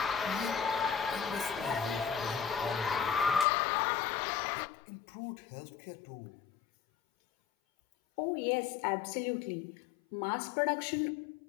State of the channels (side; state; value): right; drops out; at 3.5 s